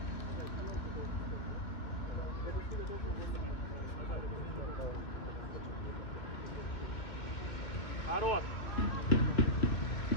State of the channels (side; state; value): right; late; 2.3 ms